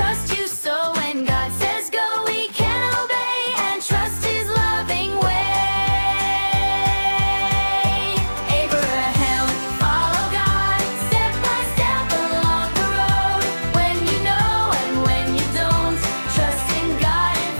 you. So when God says go, we can obey and trust his loving way. Abraham, follow God, step by step along the road. When you know and when you don't, trust in God and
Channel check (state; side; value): inverted; both; correlation -1.00